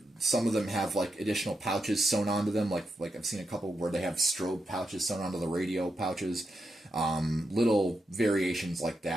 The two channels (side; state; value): both; normal; correlation 0.85